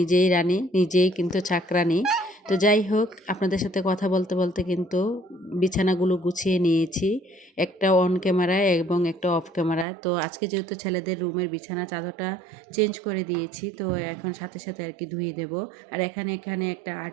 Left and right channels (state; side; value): drops out; left; at 9.9 s